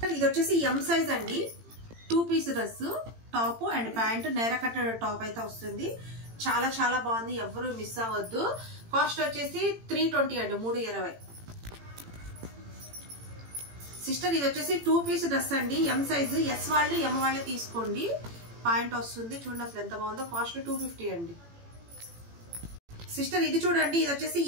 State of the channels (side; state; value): left; late; 18 ms